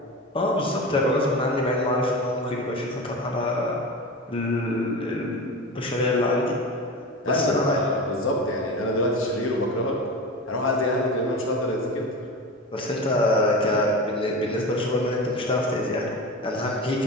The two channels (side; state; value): both; normal; correlation 0.27